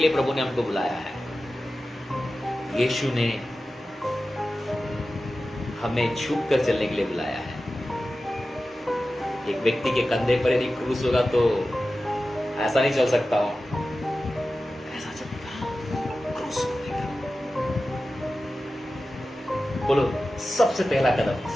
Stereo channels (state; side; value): normal; both; correlation 0.94